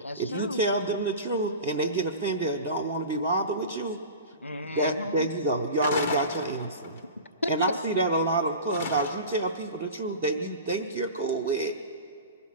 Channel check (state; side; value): inverted; both; correlation -0.33